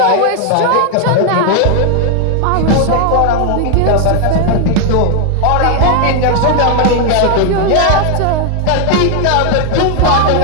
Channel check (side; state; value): both; different; correlation 0.00